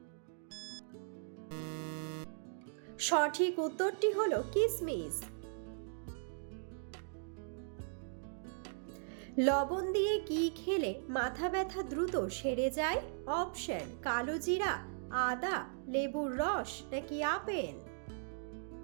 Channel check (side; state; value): left; silent; digital silence